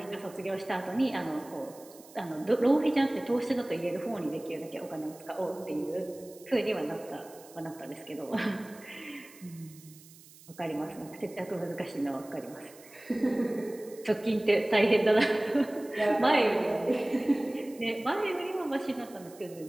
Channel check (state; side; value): noise; right; hiss, 22 dB below the sound